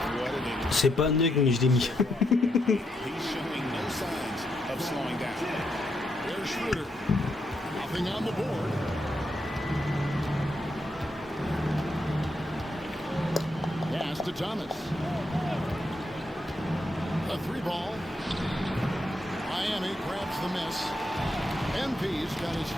C'est pas un nug, mais je l'ai mis. Pass to Thomas. A 3-ball. Miami grabs the miss. MP's got his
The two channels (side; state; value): both; normal; correlation 0.80